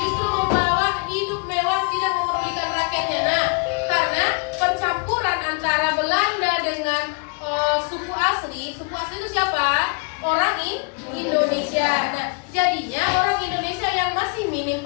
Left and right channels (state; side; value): quieter; right; 32.6 dB